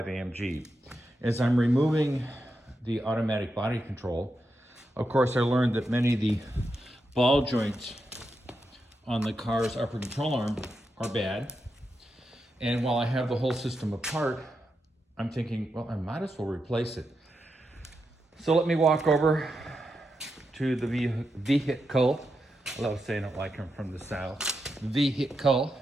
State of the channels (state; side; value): normal; both; correlation 0.86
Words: AMG. As I'm removing the automatic body control, of course, I learned that many of the ball joints on the car's upper control arm are bad. And while I have the whole system apart, I'm thinking, well, I might as well replace it. So let me walk over to the vehicle. I love saying it like I'm from the South. Vehicle.